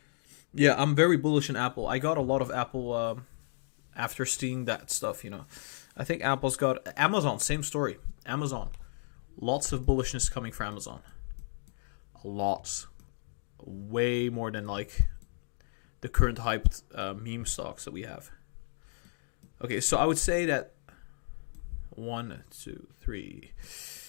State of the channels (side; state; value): right; silent; digital silence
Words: Yeah, I'm very bullish on Apple. I got a lot of Apple after seeing that stuff, I think Apple's got... Amazon, same story. Amazon. Lots of bullishness coming from Amazon. Lots. Way more than, like, the current hyped meme stocks that we have. Okay, so I would say that 1, 2, 3.